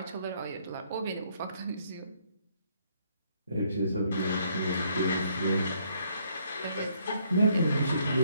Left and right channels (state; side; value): inverted; both; correlation -0.69